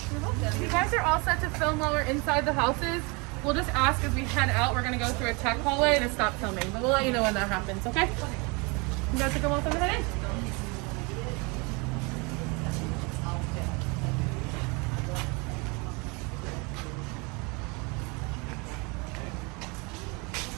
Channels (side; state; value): left; quieter; 29.3 dB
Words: You're welcome. You guys are all set to film while we're inside the houses. We'll just ask as we head out. We're going to go through a tech hallway to stop filming, but we'll let you know when that happens, okay? You guys are going to head in?